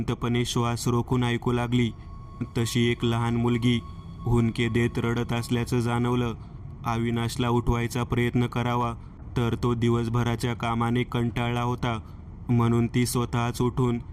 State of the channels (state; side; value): identical; both; correlation 1.00